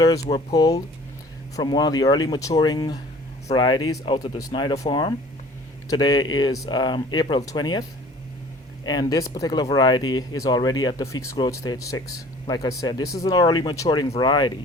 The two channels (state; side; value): normal; both; correlation 0.49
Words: were pulled from one of the early maturing varieties out of the Snyder farm. Today is April 20th, and this particular variety is already at the Feekes growth stage 6. Like I said, this is an early maturing